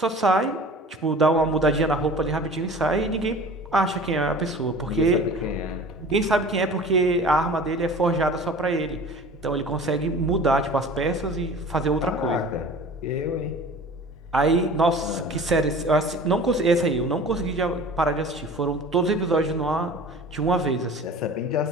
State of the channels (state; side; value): normal; both; correlation 0.42